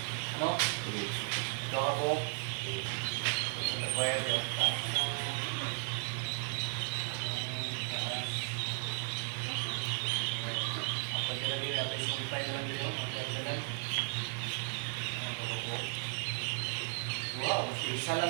Ano? Ito ako. Wire yun. Kapag nilagay natin sumpay na lang dito. Wow, isa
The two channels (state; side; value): silent; left; 54 dB below the other